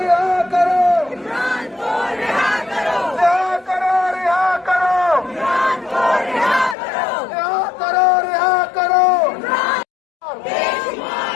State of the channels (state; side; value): drops out; right; at 6.8 s